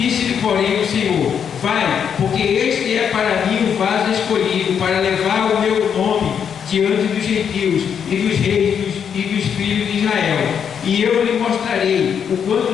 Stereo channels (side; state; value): right; quieter; 7.7 dB